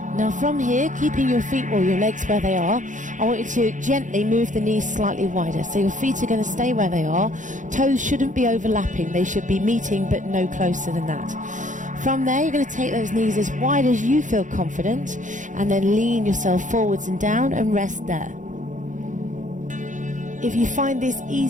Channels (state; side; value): late; left; 0.37 ms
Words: Now from here, keeping your feet or your legs where they are, I want you to gently move the knees slightly wider. So your feet are going to stay where they are. Toes shouldn't be overlapping. They should be meeting, but no closer than that. From there, you're going to take those knees as wide as you feel confident, and then lean yourself forwards and down and rest there. If you find this